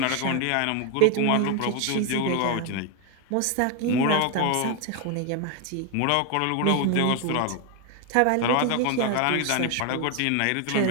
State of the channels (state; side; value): different; both; correlation 0.01